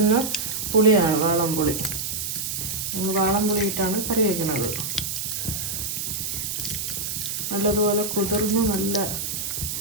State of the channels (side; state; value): right; noise; hiss, 3 dB below the sound